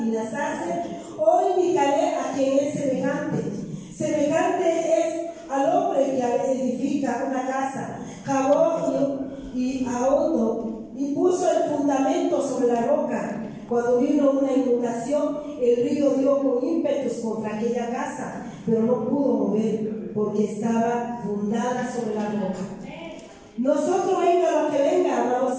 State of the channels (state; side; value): identical; both; correlation 1.00